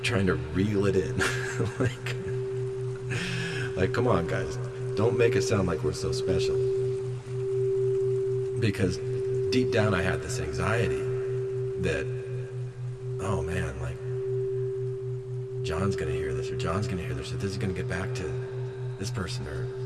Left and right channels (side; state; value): both; identical; correlation 1.00